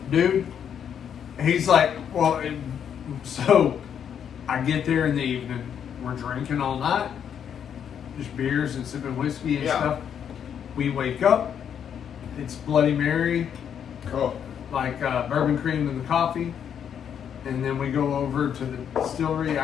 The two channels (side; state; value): right; quieter; 8.4 dB